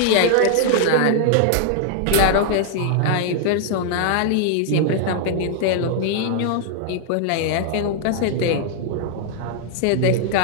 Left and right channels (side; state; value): both; different; correlation 0.00